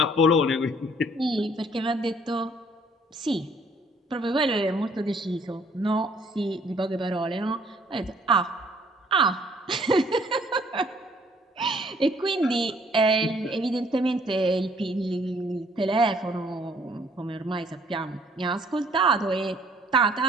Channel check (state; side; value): normal; both; correlation 0.61